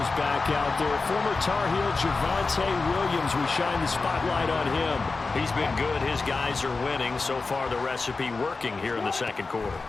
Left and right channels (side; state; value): right; quieter; 4.0 dB